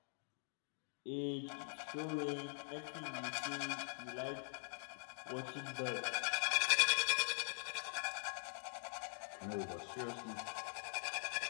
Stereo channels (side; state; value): right; silent; digital silence